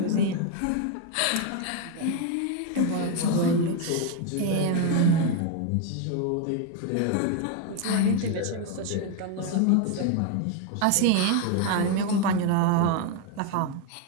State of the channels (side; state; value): both; different; correlation 0.01